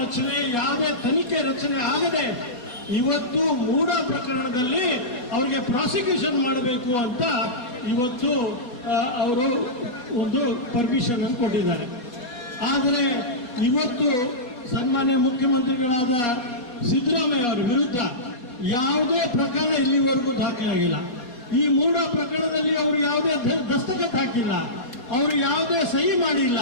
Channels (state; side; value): late; right; 4.2 ms